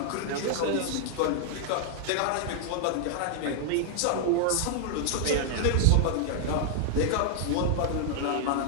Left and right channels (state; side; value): different; both; correlation 0.00